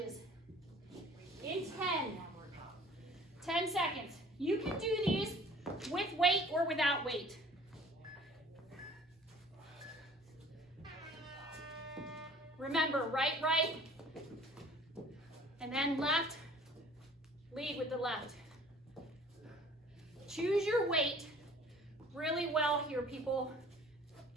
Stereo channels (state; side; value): normal; both; correlation 0.51